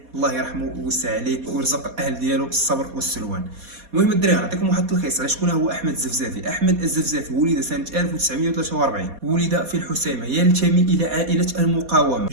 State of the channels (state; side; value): late; left; 4.2 ms